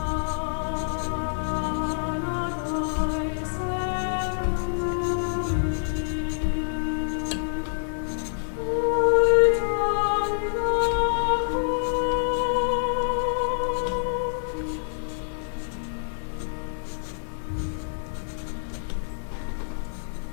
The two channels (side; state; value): right; silent; digital silence